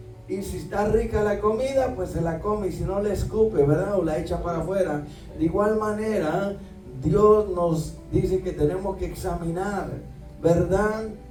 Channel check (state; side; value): identical; both; correlation 1.00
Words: y si está rica la comida, pues se la come, y si no, la escupe, ¿verdad?, o la echa para afuera. De igual manera, Dios nos dice que tenemos que examinar, ¿verdad?,